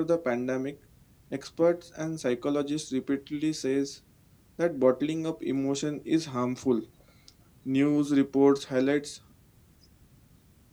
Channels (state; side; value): identical; both; correlation 1.00